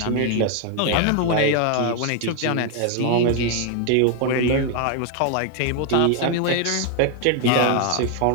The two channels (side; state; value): both; different; correlation 0.01